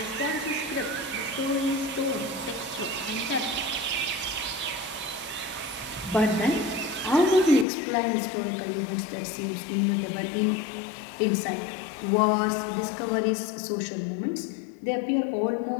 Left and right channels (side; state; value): right; drops out; at 7.7 s